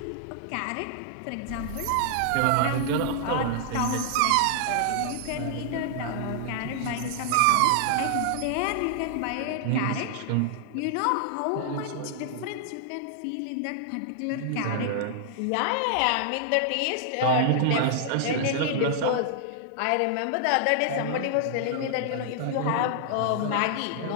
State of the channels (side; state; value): both; different; correlation -0.01